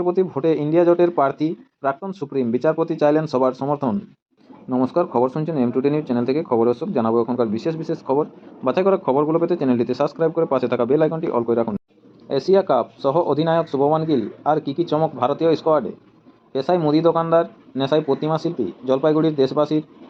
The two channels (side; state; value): both; identical; correlation 1.00